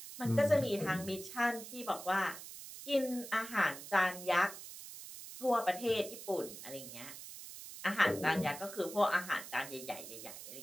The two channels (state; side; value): noise; right; hiss, 12 dB below the sound